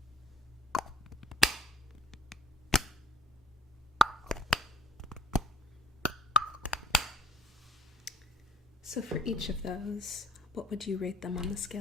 So for each of those, what would you rate them on the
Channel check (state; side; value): normal; both; correlation 0.60